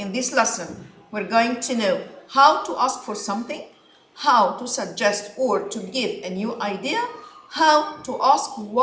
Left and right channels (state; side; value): identical; both; correlation 1.00